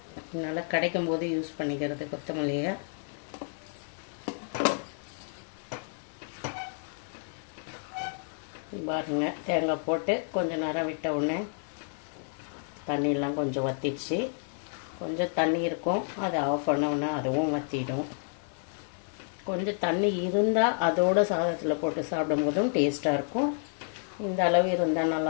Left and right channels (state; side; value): silent; right; digital silence